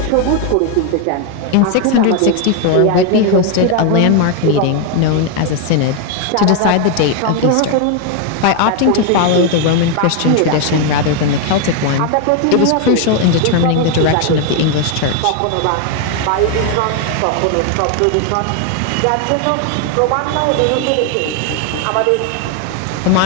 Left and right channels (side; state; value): both; different; correlation 0.01